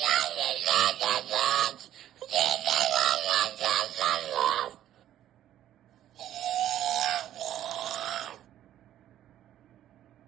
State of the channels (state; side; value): quieter; left; 12.0 dB